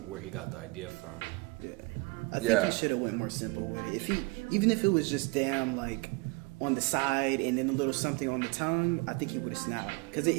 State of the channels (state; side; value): quieter; left; 26.6 dB